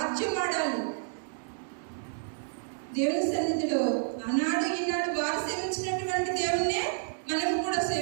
దేవుని సన్నిధిలో ఆనాడు ఈనాడు వారు సేవించినటువంటి దేవుణ్ణే మనం కూడా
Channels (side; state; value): left; silent; digital silence